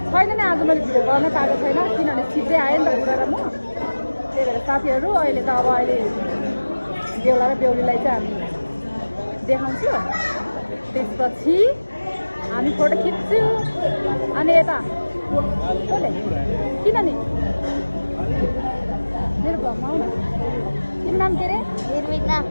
छैन नि आज मैले भिडियो गर्न पाएको छैन किनभने छिट्टै आयो नि त बुढा र म त्यही भएर साथीहरू अहिले त अब अहिले बेहुला र बेहुलीलाई चाहिँ हामी देखाउँछु त्यसपछि हामी फोटो खिच्छु अनि यता किन नि मेरो भ्लगमा आउनु तिम्रो नाम के अरे निर्मिता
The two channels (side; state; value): both; inverted; correlation -1.00